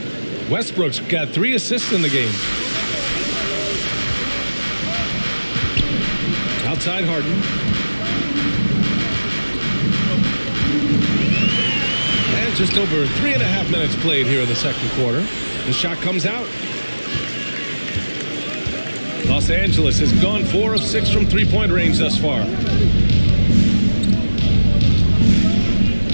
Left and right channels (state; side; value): inverted; both; correlation -1.00